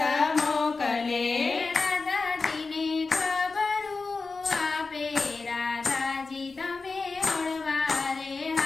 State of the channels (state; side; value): quieter; right; 4.1 dB